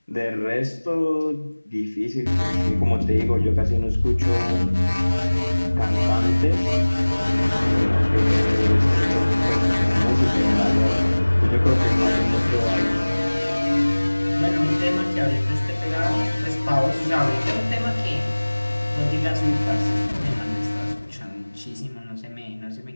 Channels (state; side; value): inverted; both; correlation -1.00